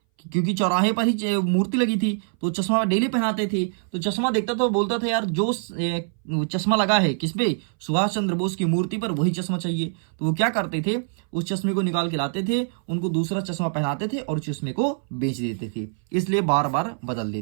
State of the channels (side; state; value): left; silent; 60 dB below the other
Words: क्योंकि चौराहे पर ही मूर्ति लगी थी तो चश्मा डेली पहनाते थे, तो चश्मा देखता था, बोलता था यार जो चश्मा लगा है किस पे, सुभाष चंद्र बोस की मूर्ति पर, वही चश्मा चाहिए। तो वो क्या करते थे, उस चश्मे को निकाल के लाते थे, उनको दूसरा चश्मा पहनाते थे और चश्मे को बेच देते थे, इसलिए बार बार बदल